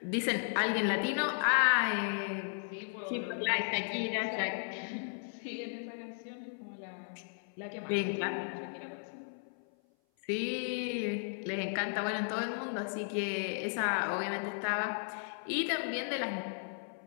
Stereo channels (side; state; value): right; silent; 54 dB below the other